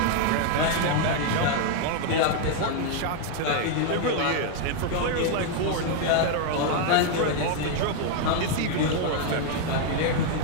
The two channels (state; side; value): different; both; correlation 0.00